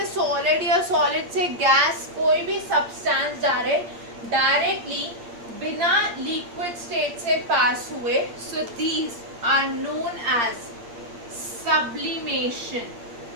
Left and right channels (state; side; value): late; left; 8.6 ms